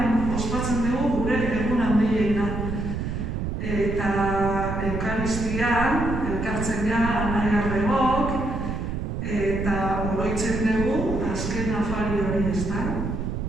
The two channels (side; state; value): right; noise; rumble, 3 dB below the sound